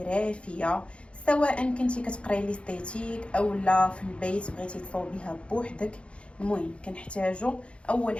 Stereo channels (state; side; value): late; right; 0.059 ms